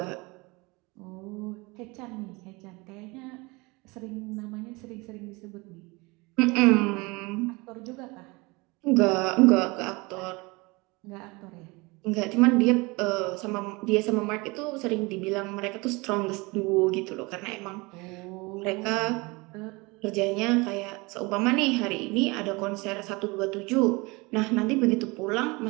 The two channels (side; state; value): left; quieter; 25.3 dB